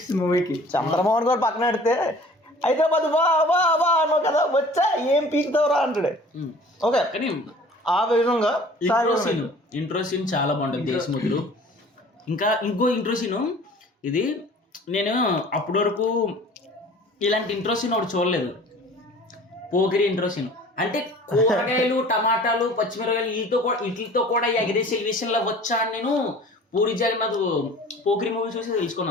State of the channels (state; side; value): normal; both; correlation 0.47